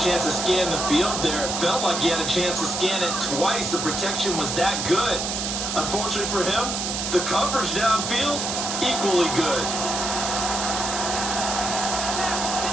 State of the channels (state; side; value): noise; right; hiss, 2 dB below the sound